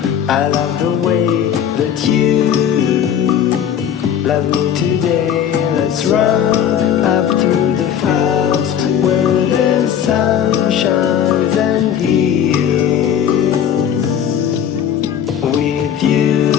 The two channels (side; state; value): right; quieter; 9.0 dB